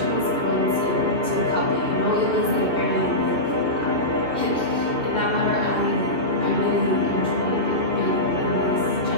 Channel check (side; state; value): left; late; 2.7 ms